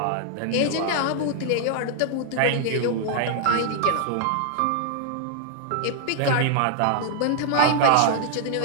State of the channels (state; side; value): different; both; correlation 0.00